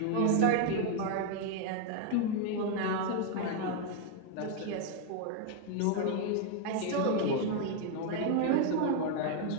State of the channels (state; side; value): different; both; correlation 0.00